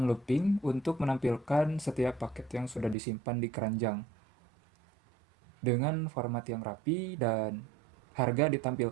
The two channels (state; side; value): drops out; left; at 3.0 s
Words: looping untuk menampilkan setiap paket yang sudah disimpan di keranjang. dengan format yang rapi dan harga